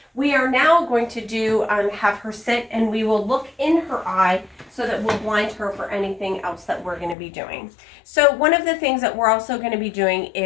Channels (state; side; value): drops out; right; at 7.2 s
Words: We are now going to do have her sit, and we will look in her eye so that we'll blind her for anything else that we're going to be doing. So one of the things that we're also going to be doing